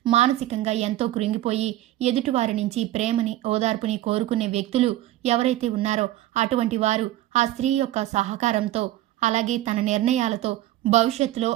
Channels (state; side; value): quieter; left; 14.8 dB